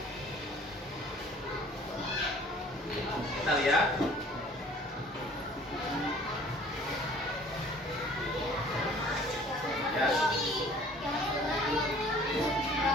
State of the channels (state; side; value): normal; both; correlation 0.52